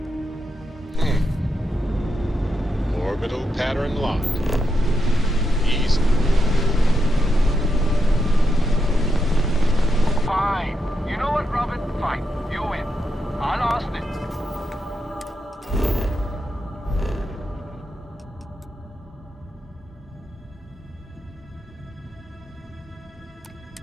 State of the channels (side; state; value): both; normal; correlation 0.84